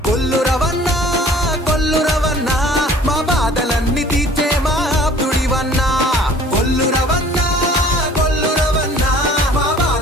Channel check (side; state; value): both; normal; correlation 0.51